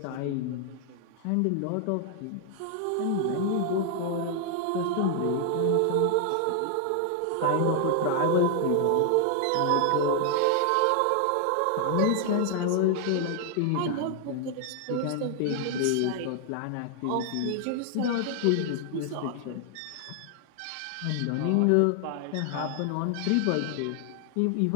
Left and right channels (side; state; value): both; different; correlation 0.00